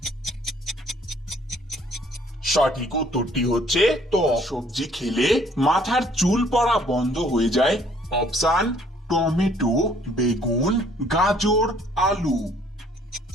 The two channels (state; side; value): normal; both; correlation 0.60